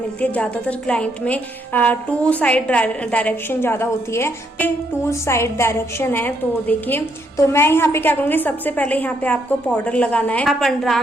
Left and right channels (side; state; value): both; normal; correlation 0.74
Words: है। ज्यादातर क्लाइंट में 2 साइड डायरेक्शन ज्यादा होती है, 2 साइड डायरेक्शन है। तो देखिए, तो मैं यहाँ पे क्या करूंगी, सबसे पहले यहाँ पे आपको पाउडर लगाना है। आप अंडर